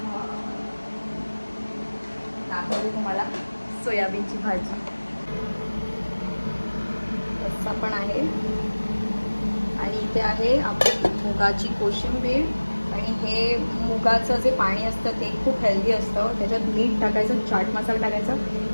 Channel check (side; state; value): both; inverted; correlation -1.00